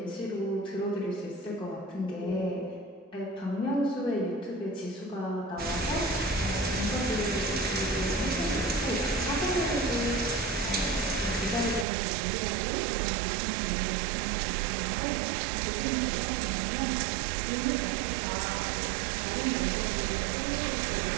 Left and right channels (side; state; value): left; drops out; at 11.9 s